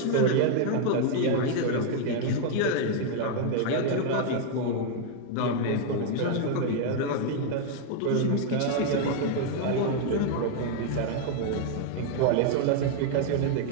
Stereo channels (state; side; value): different; both; correlation 0.00